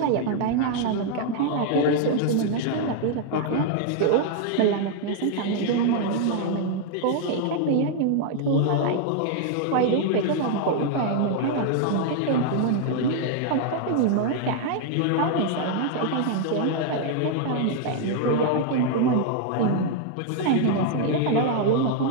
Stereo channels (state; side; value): different; both; correlation 0.00